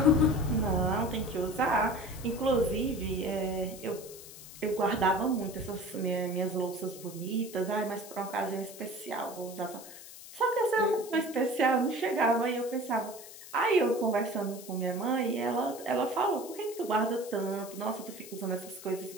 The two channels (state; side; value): noise; left; hiss, 15 dB below the sound